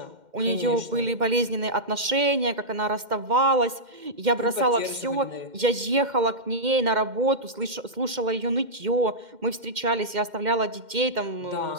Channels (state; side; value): late; left; 2.1 ms